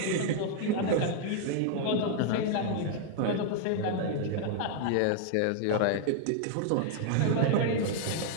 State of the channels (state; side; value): different; both; correlation 0.00